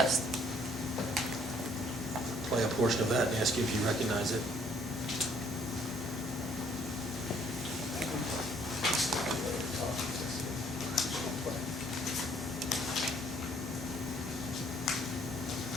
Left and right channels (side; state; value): both; normal; correlation 0.63